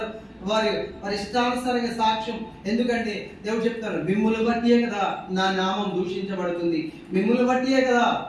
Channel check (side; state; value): both; identical; correlation 1.00